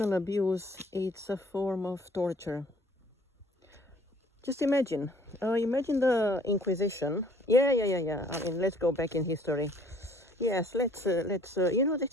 abuse is a form of torture. Just imagine the Inquisition. Yeah. I mean, let's go back in history. Yes, let's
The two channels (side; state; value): both; normal; correlation 0.57